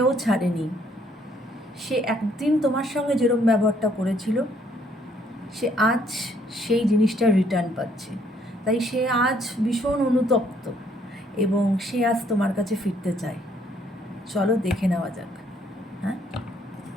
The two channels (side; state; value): both; normal; correlation 0.67